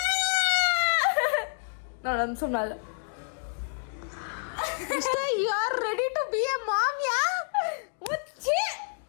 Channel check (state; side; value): silent; right; digital silence